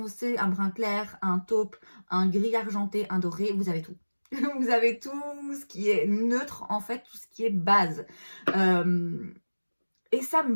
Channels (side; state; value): both; inverted; correlation -1.00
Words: un brun clair, un taupe, un gris argenté, un doré, vous avez tout. Vous avez tout ce qui est neutre en fait, tout ce qui est base. Et ça